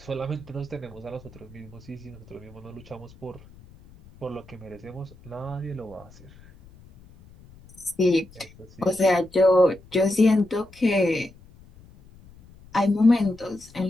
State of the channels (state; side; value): noise; left; rumble, 23 dB below the sound